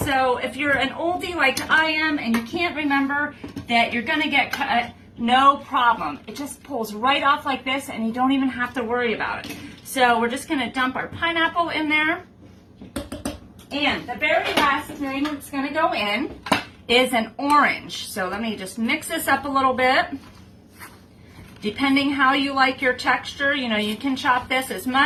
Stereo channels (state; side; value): identical; both; correlation 1.00